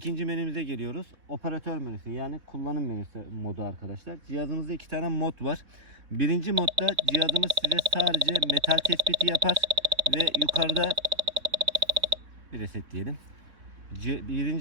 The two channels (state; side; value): late; left; 3.7 ms